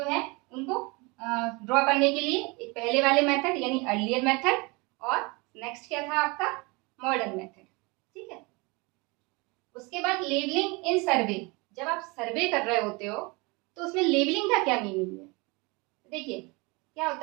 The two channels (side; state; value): left; quieter; 27.1 dB